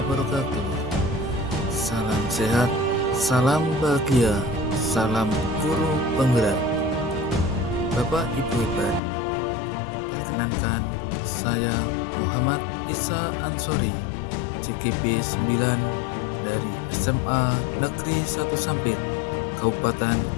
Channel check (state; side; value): drops out; right; at 9.0 s